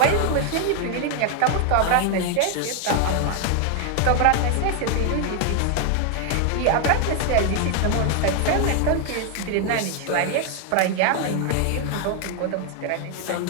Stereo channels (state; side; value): different; both; correlation 0.00